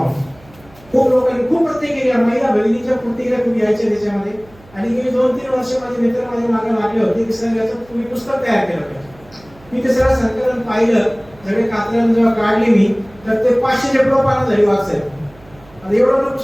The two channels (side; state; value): right; noise; hum, 26 dB below the sound